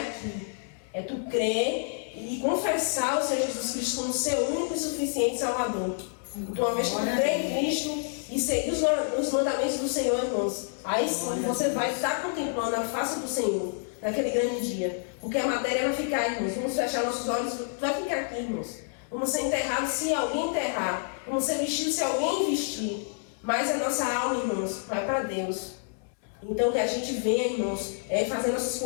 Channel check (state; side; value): silent; right; 59 dB below the other